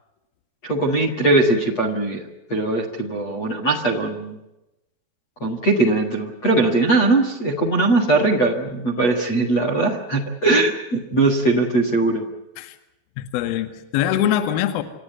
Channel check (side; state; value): right; late; 8.2 ms